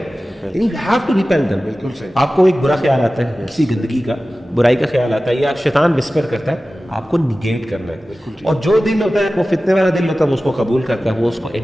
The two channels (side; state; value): both; normal; correlation 0.96